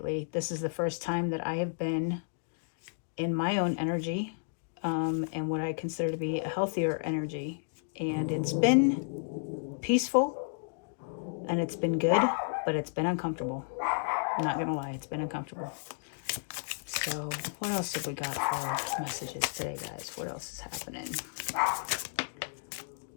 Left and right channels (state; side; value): silent; right; digital silence